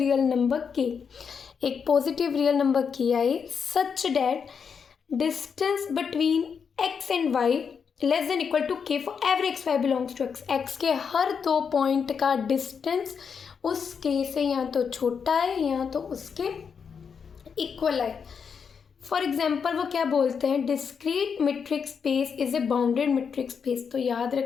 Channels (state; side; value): quieter; right; 6.4 dB